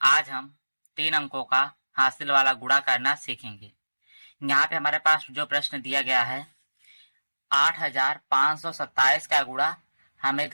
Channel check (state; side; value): inverted; both; correlation -1.00